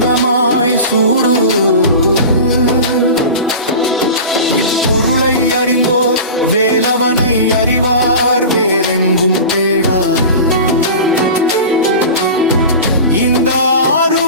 சூடு. இப்பொருளை அறிந்தோர் வேலவனை அறிவார், வேறெங்கும் தேடார். இந்த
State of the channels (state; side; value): inverted; both; correlation -0.32